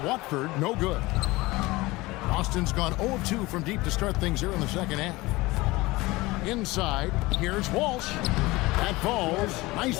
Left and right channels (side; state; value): right; quieter; 21.0 dB